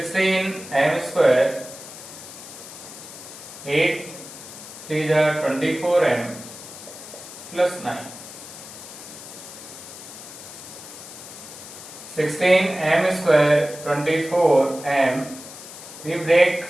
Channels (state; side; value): noise; left; hiss, 14 dB below the sound